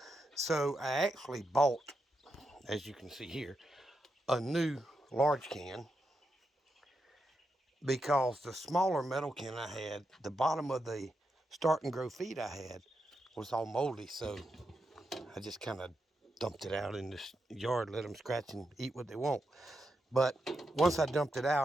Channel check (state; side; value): normal; both; correlation 0.85